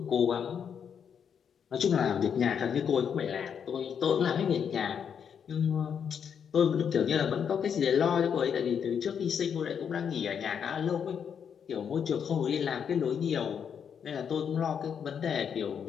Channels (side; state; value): right; quieter; 7.6 dB